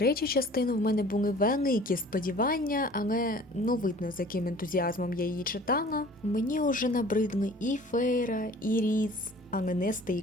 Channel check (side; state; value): both; normal; correlation 0.48